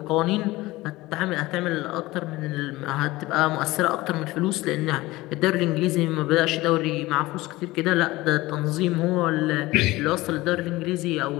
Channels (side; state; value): right; quieter; 19.3 dB